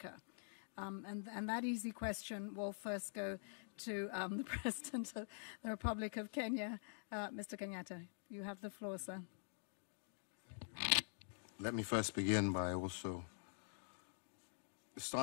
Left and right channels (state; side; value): silent; right; digital silence